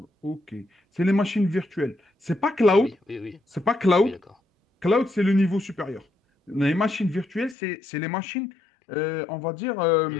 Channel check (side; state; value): right; drops out; at 7.6 s